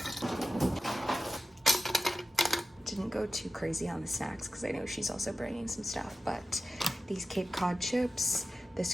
Didn't go too crazy on the snacks because I know she's also bringing some stuff, but these Cape Cod chips,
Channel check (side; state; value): both; normal; correlation 0.93